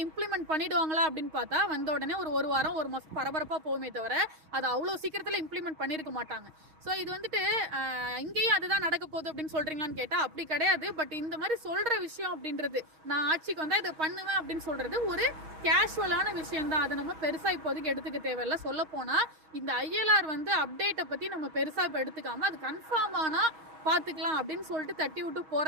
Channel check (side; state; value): left; late; 6.4 ms